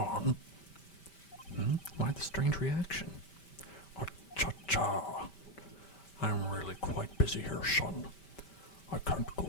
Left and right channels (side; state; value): right; late; 5.1 ms